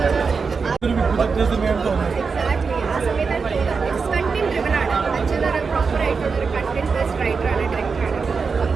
ഒരു വിപുലത്തെ സിനിമയാണ് തോന്നുന്നത്. എക്സാക്ട്ലി ആ സമയത്താണ് കണ്ടന്റ് ഡ്രിവൻ ആണ്. അച്ഛനൊരു പ്രോപ്പർ ആയിട്ടുള്ള ഒരു കണ്ടന്റ് ബേസ്ഡ് റൈറ്ററാണ്, ഡയറക്ടറാണ്.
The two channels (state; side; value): quieter; left; 5.1 dB